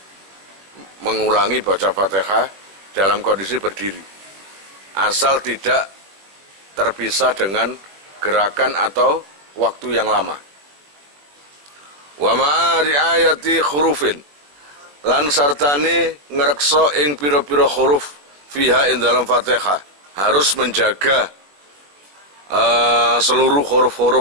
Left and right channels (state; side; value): late; left; 21 ms